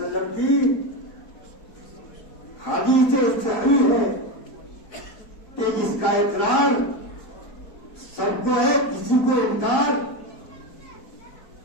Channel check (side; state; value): right; late; 4.4 ms